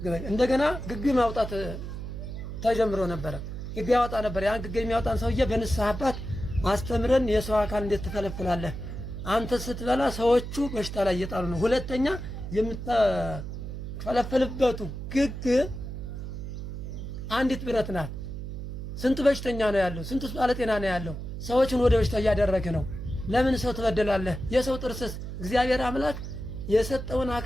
እንደገና ግግ ማውጣት ተጀምሮ ነበረ። ግግ ያወጣ ነበር። ያን ግግ የሚያወጣን ሰውዬ በንስሐ አባት አስተምረን የሰው አካል እንዴት ትፈለፍላለህ? አንተ ስትበላ ሰዎቹ በሽታ ላይ እየጣሉ ነው። ሁለተኛ የምትፈለፈልበቱ ግግ አንዲት ብረት ናት። ስንት በሽተኛ ነው ያለው? ስንት ባለጤና ነው ያለው? ሰዎችን ወደ በሽታ እያደረገ ነው። ለምን ሰው ትበደላለህ? የሰው ጥርስስ እግዚአብሔር አምላክ የሰጠውን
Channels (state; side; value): noise; right; hum, 7 dB below the sound